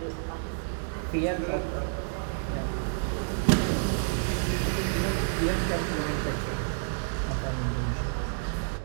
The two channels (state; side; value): silent; left; digital silence